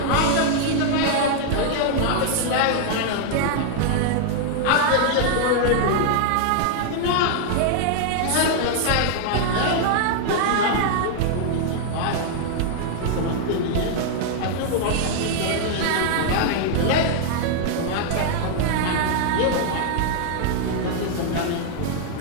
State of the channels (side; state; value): both; different; correlation -0.01